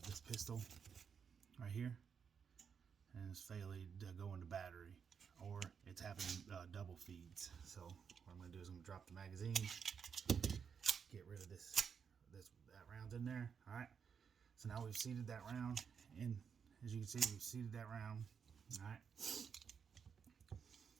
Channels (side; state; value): left; quieter; 6.7 dB